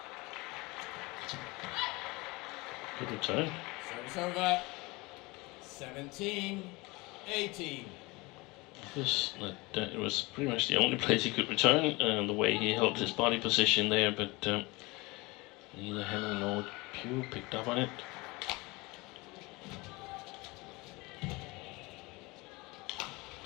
Good return. Service over. 17-18. It was pretty much the only place he could return, the way he held his body position there, but neither Hemming nor Pugh picked up on it.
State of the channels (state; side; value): quieter; right; 24.1 dB